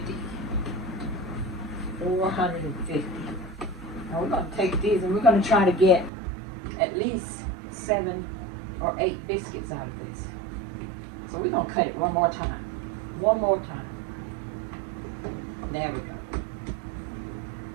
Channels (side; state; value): left; drops out; at 6.1 s